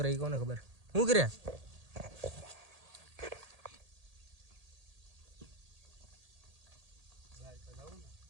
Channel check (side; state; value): left; late; 1.8 ms